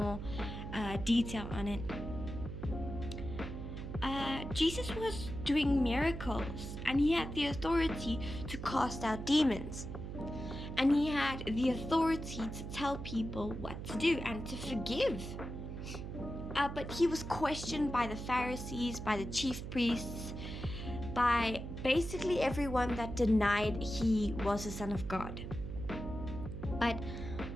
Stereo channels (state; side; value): noise; right; hum, 7 dB below the sound